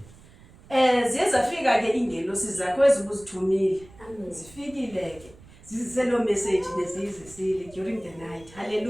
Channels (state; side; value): noise; right; rumble, 23 dB below the sound